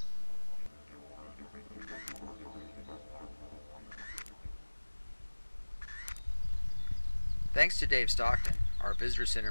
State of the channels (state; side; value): inverted; both; correlation -1.00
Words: Thanks to Dave Stockton, our visitor